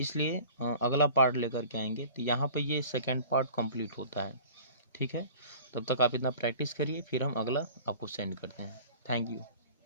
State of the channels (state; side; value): inverted; both; correlation -0.44